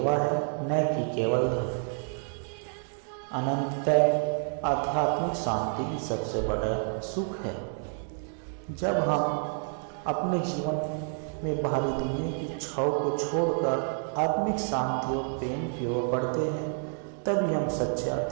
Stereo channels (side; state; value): left; silent; 56 dB below the other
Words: है, न कि केवल धन। अनंततः आध्यात्मिक शांति की सबसे बड़ा सुख है। जब हम अपने जीवन में बाहरी दुनिया की छाव को छोड़कर आत्मिक शांति और प्रेम की ओर बढ़ते हैं, तभी हम सच्चे